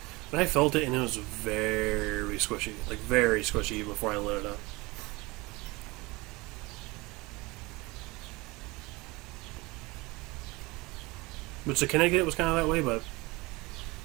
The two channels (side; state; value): left; quieter; 23.4 dB